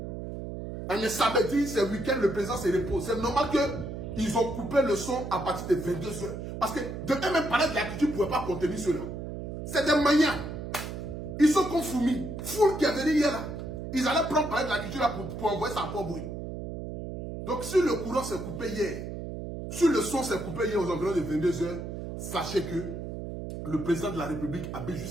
Un samedi, c'est week-end, le président se repose. C'est normal qu'ils ont coupé le son à partir de 22h. Parce que de même parler de la culture ne pouvait pas contenir cela. C'est des maniants. Ils sont comme Foumi. Foule qui est venu hier là. Ils allaient prendre parler de la culture là pour envoyer ça pour bruit. Donc si le courant s'est coupé hier, si le son s'est coupé hier aux environs de 22h, sachez que le président de la République habite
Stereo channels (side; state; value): right; noise; hum, 7 dB below the sound